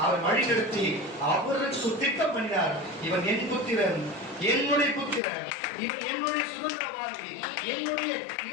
அவர் வழிநடத்தி அவருக்கு திட்டம் பண்ணினார். இவன் என் புத்திரன், என்னுடைய புத்திரன், இவன் என்னுடைய சுதந்திரவாதி,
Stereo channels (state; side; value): drops out; right; at 5.2 s